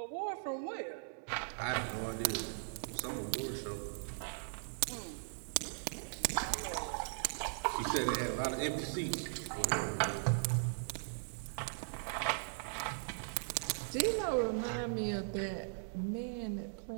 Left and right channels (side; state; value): left; silent; digital silence